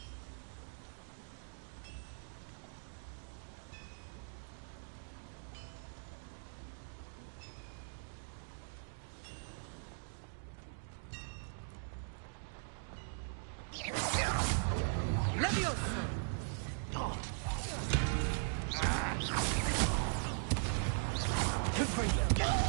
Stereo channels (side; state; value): left; silent; digital silence